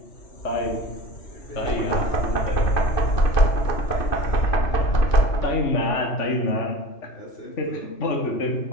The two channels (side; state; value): right; late; 2.6 ms